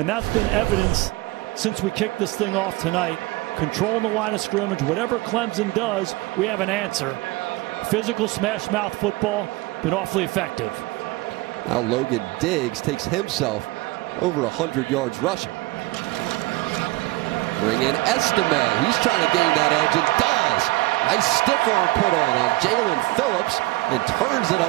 that's been evidence since we kicked this thing off tonight. Controlling the line of scrimmage. Whatever Clemson does, we have an answer. Physical smash mouth football, been awfully effective. Now Logan Diggs takes himself over 100 yards rushing. Bring in Estime. He's trying to gain that edge and does. Nice stiff arm put on Jalen Phillips and turns it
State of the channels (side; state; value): left; quieter; 20.9 dB